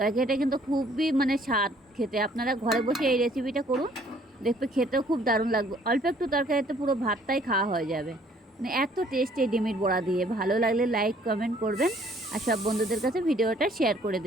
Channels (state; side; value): normal; both; correlation 0.60